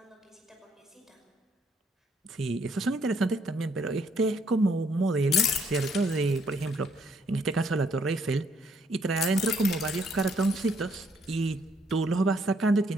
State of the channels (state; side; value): normal; both; correlation 0.69